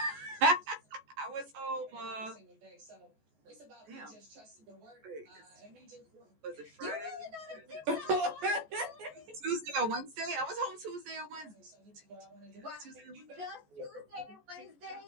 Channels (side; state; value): left; late; 14 ms